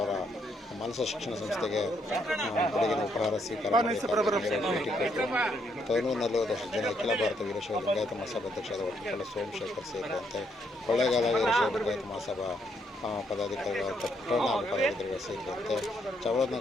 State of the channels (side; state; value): both; normal; correlation 0.74